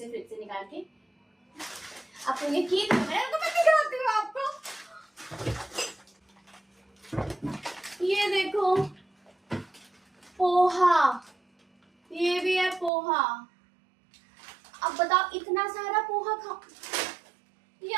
निकाल के। आपको यकीन नहीं है तो मैं दिखाती हूँ आपको। ये देखो पोहा, ये भी है पोहा। अब बताओ इतना सारा पोहा खा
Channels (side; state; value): left; drops out; at 12.9 s